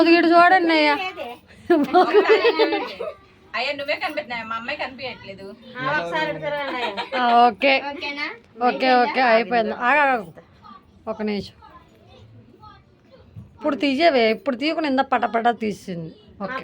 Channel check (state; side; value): identical; both; correlation 1.00